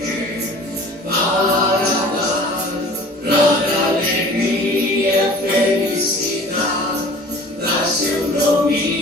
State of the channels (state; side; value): normal; both; correlation 0.45